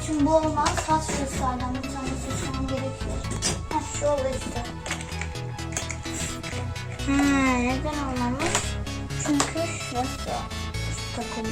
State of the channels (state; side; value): identical; both; correlation 1.00